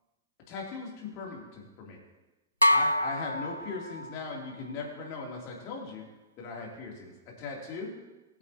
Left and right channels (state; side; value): inverted; both; correlation -0.81